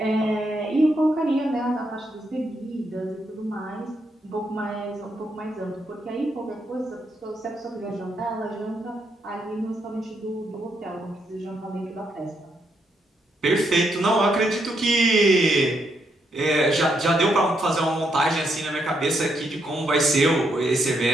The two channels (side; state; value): both; normal; correlation 0.78